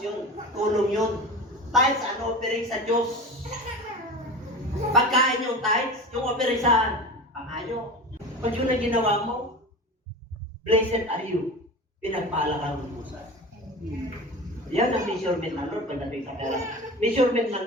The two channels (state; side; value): normal; both; correlation 0.32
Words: yun. Tulong yun. Tithes and offering sa Diyos. Pagkain yung tithes, yung offering saan? Pangayo. Pag yun ang ginawa mo, blessed are you. Pinagpala kang lubusan. Yan ang measurement ng Lord pagdating sa pera. Measurement ng